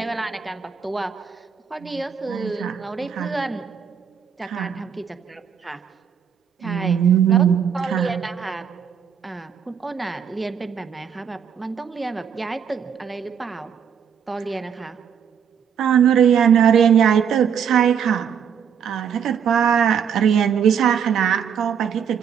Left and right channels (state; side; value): quieter; left; 7.7 dB